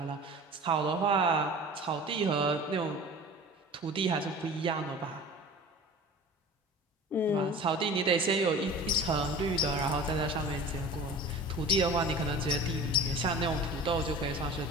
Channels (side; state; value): both; normal; correlation 0.39